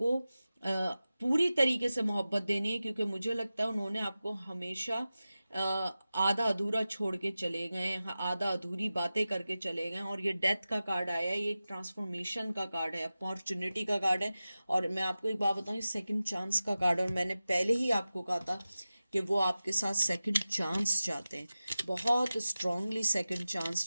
पूरी तरीके से मोहब्बत देनी है। क्योंकि मुझे लगता है उन्होंने आपको हमेशा आधा अधूरा छोड़ के चले गए हैं, आधा अधूरी बातें करके चले गए हैं। और ये डेथ का कार्ड आया है, ये एक ट्रांसफॉर्मेशन का कार्ड है, अपॉर्चुनिटी का कार्ड है। और मैं आपको एक बात बताऊँ, ये सेकंड चांस का कार्ड है, और मैंने पहले ही आपको कहा था कि वो आपके साथ सेकंड चांस चाहते हैं, बहुत स्ट्रांगली सेकंड चांस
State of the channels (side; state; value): both; inverted; correlation -0.95